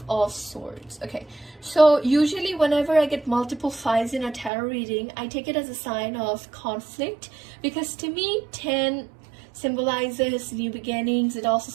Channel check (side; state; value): left; drops out; at 4.5 s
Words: of Swords. Okay, so usually whenever I get multiple 5s in a tarot reading, I take it as a sign of conflict, because to me 10 symbolizes new beginnings. It also